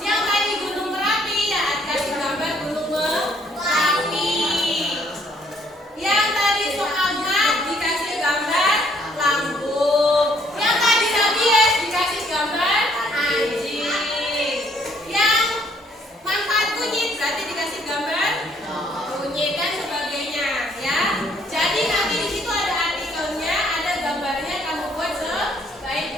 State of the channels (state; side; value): normal; both; correlation 0.65